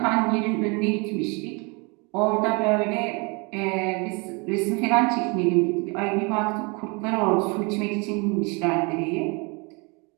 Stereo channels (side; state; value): left; quieter; 30.4 dB